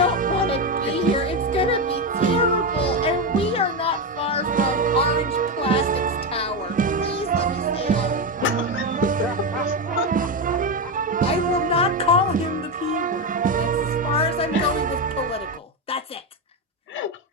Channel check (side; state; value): both; normal; correlation 0.11